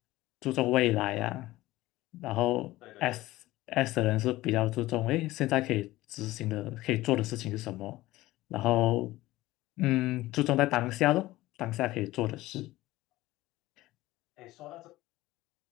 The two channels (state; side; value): quieter; right; 17.5 dB